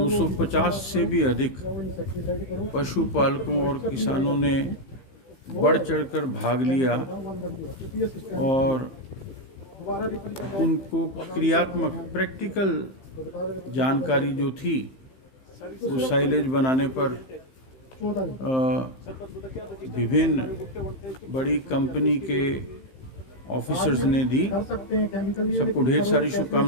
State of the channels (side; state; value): right; late; 15 ms